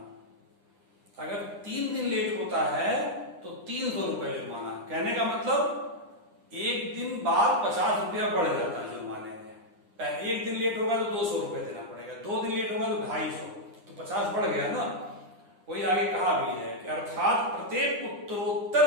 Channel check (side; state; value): left; late; 9.8 ms